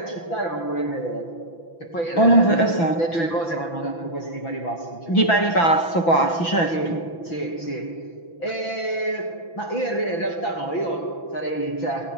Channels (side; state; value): right; late; 6.0 ms